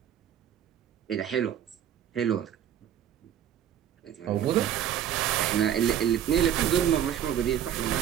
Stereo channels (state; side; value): quieter; left; 10.1 dB